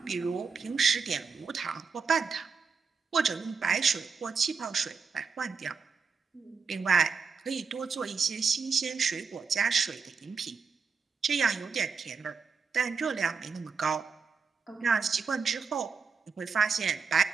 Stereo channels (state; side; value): quieter; left; 5.4 dB